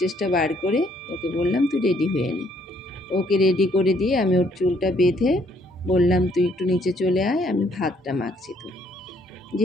বার করে ওকে বললাম তুই রেডি হয়ে নে। ওকে রেডি করে দিয়ে আমি ওর চুলটা বেঁধে বললাম তুই একটু নিচে চলে আয়, আমি ভাতটা মাখছি। তো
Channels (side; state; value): both; normal; correlation 0.67